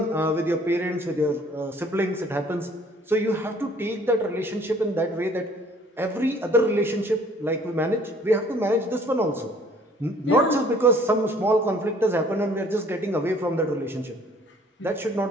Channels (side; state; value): both; normal; correlation 0.57